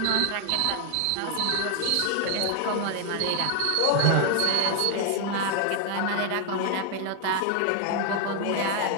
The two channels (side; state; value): both; different; correlation 0.00